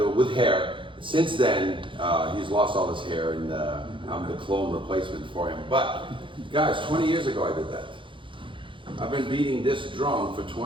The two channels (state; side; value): late; left; 0.24 ms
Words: with hair. Since then, he's lost all his hair and I'm the clone replacement for him. But guys, 20 years ago I did that. I've been beating this drum for